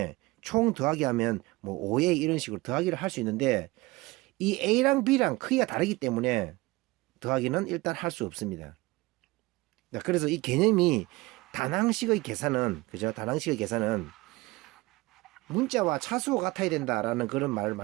총 더하기 하면 뭐 5A 이런 식으로 더하기를 할 수 있는데, 이 A랑 B랑 크기가 다르기 때문에 더하기는 일단 할 수 없습니다. 그래서 이 개념이 단항식의 계산은, 그죠? 단항식의 계산은 문자와 차수가 같아야 된다라는 그런 말을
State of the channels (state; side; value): quieter; left; 21.5 dB